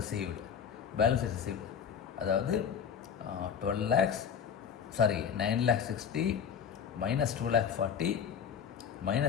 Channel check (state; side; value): quieter; right; 7.6 dB